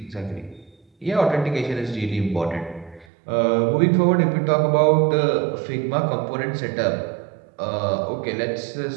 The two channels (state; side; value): drops out; left; at 3.1 s